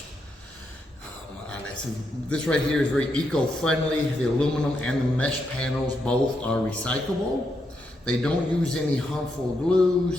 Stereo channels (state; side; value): normal; both; correlation 0.81